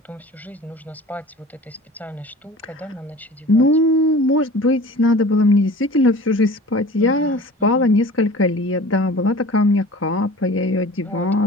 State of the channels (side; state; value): both; normal; correlation 0.42